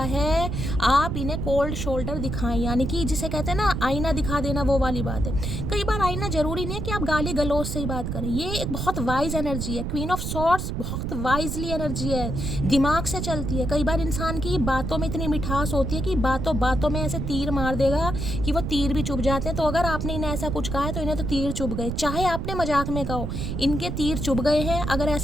आप इन्हें कोल्ड शोल्डर दिखाएं, यानी कि जिसे कहते हैं ना आईना दिखा देना, वो वाली बात है। कई बार आईना जरूरी नहीं है कि आप गाली गलौज से ही बात करें, ये एक बहुत वाइज एनर्जी है। क्वीन ऑफ सॉर्ड्स बहुत वाइजली एनर्जी है, दिमाग से चलती है। कई बार इंसान की बातों में इतनी मिठास होती है कि बातों बातों में ऐसे तीर मार देगा कि वो तीर भी चुभ जाते हैं। तो अगर आपने इन्हें ऐसा कुछ कहा है तो इन्हें तो तीर चुभ गए, चाहे आपने मजाक में कहो, इनके तीर चुभ गए हैं। अगर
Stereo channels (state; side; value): noise; right; rumble, 3 dB below the sound